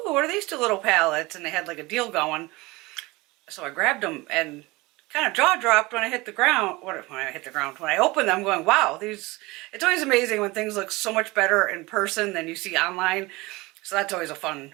what are these two little palettes? And they had like a deal going. So I grabbed them and kind of jaw dropped when I hit the ground. When I opened them, going, wow, these. It's always amazing when things look so much better in person than you see online. So that's always a fun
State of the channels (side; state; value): left; quieter; 22.4 dB